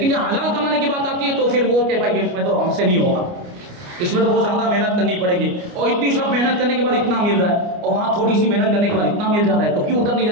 جب حلال کمانے کی بات آتی ہے تو پھر وہ کہ بھائی اس میں تو ہم سے نہیں ہوگا، اس میں تو بہت زیادہ محنت کرنی پڑے گی، اور اتنی سب محنت کرنے کے بعد اتنا مل رہا ہے، اور وہاں تھوڑی سی محنت کرنے کے بعد اتنا مل جا رہا ہے، تو کیوں ادھر نہیں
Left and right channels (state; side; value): late; left; 29 ms